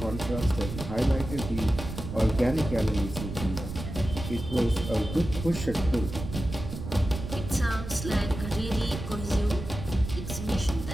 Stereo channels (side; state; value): right; noise; rumble, 8 dB below the sound